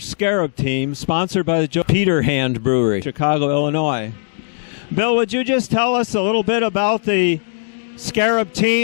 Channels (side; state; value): right; silent; digital silence